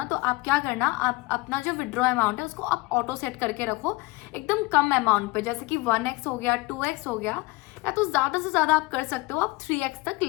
तो आप क्या करना, आप अपना जो विड्रॉ अमाउंट है उसको आप ऑटो सेट करके रखो एकदम कम अमाउंट पे। जैसे कि 1x हो गया, 2x हो गया, या तो ज्यादा से ज्यादा आप कर सकते हो, आप 3x तक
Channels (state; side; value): quieter; right; 23.1 dB